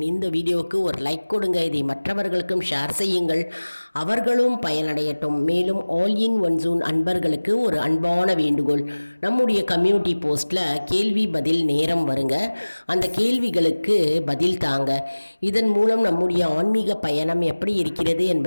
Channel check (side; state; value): both; inverted; correlation -1.00